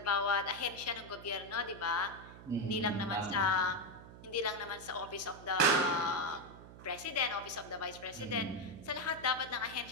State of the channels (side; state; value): right; noise; hum, 16 dB below the sound